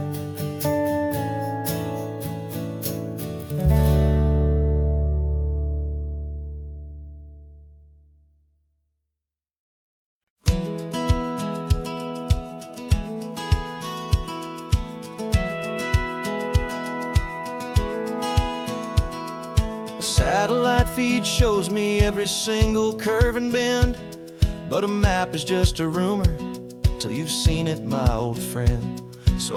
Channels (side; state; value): both; identical; correlation 1.00